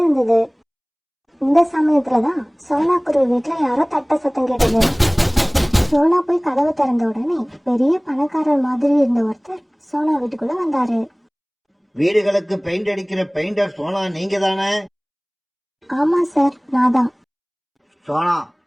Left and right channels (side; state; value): both; identical; correlation 1.00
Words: இந்த சமயத்துலதான் சோனா குருவி வீட்டுல யாரோ தட்ட சத்தம் கேட்டது. சோனா போய் கதவை திறந்த உடனே பெரிய பணக்காரர் மாதிரி இருந்த ஒருத்தர் சோனா வீட்டுக்குள்ள வந்தாரு. வீடுகளுக்கு பெயிண்ட் அடிக்கிற பெயிண்டர் சோனா நீங்க தானே? ஆமா சார், நான் தான். சோனா,